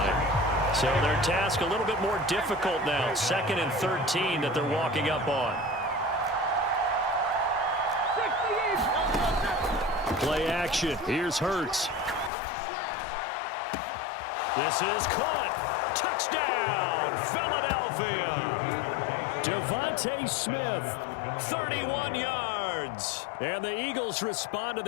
So their task a little bit more difficult now. 2nd and 13 that they're walking up on. Play action. Here's Hurts. This is caught. Touchdown, Philadelphia. Devontae Smith, 31 yards. And the Eagles respond to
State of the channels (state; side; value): drops out; right; at 12.3 s